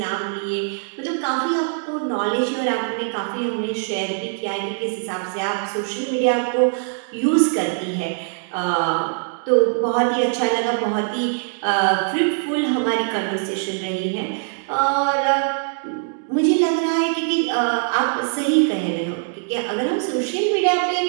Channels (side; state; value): left; silent; digital silence